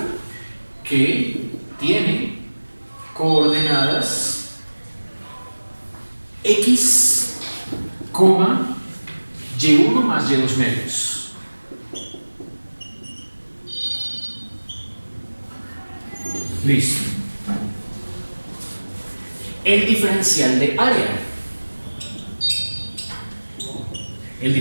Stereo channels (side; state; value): both; inverted; correlation -1.00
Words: que tiene coordenadas x, y1 más y2 medios. Listo. El diferencial de área. El